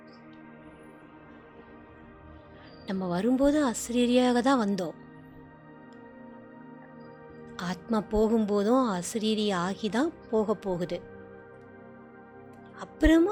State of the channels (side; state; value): both; identical; correlation 1.00